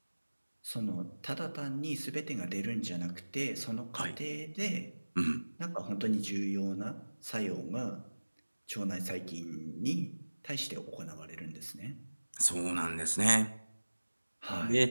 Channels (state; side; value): inverted; both; correlation -1.00